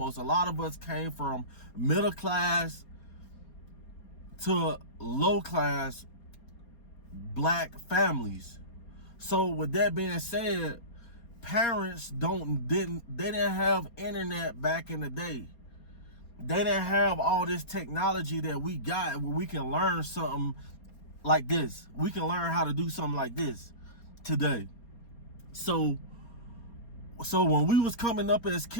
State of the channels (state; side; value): late; right; 4.3 ms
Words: A lot of us came from middle class to low class black families. So with that being said, parents didn't have internet back in the day. They didn't have all this technology that we got, where we can learn something like this. We can learn how to do something like this today. So when we was coming up as